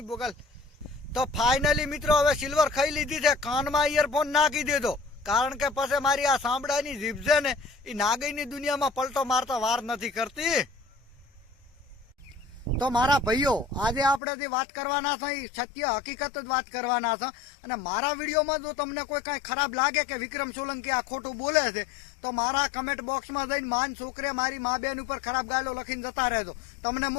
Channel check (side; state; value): right; drops out; at 14.2 s